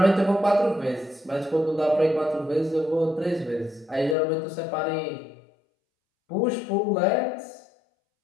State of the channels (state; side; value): drops out; right; at 4.2 s